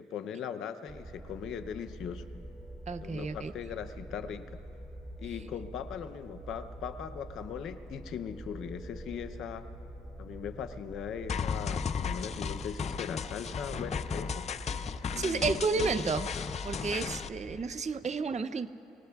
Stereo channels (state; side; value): normal; both; correlation 0.60